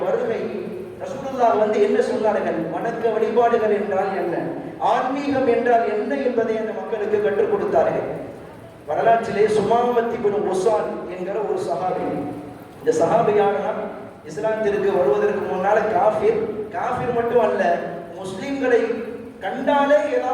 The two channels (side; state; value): both; identical; correlation 1.00